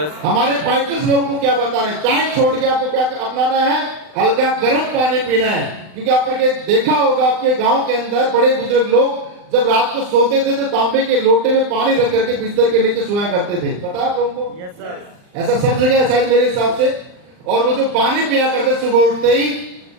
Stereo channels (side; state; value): left; late; 39 ms